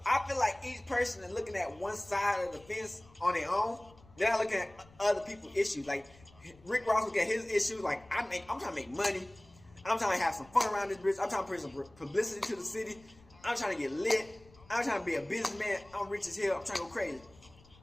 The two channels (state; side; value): noise; left; rumble, 25 dB below the sound